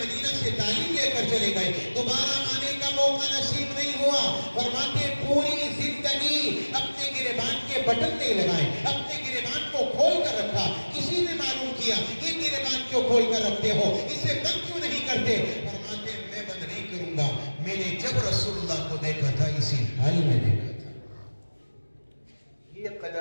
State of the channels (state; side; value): inverted; both; correlation -1.00